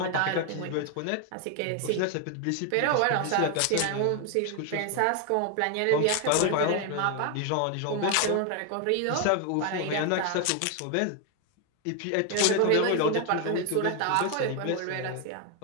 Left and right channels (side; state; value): both; different; correlation 0.01